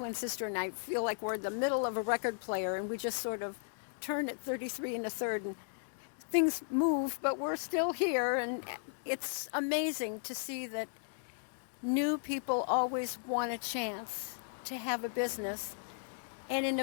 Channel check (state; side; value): silent; right; digital silence